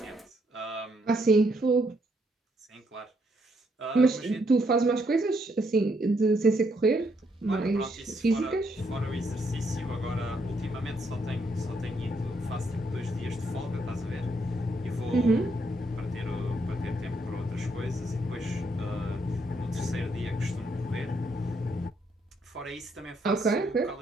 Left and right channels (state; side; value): normal; both; correlation 0.74